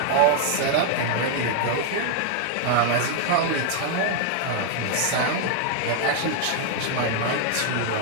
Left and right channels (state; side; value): different; both; correlation 0.00